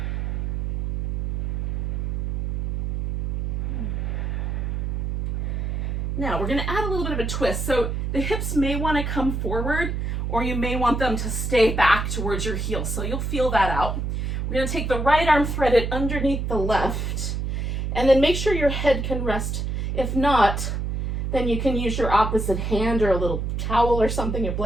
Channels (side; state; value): right; noise; hum, 1 dB below the sound